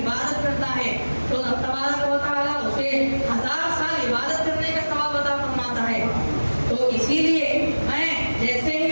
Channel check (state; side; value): inverted; both; correlation -1.00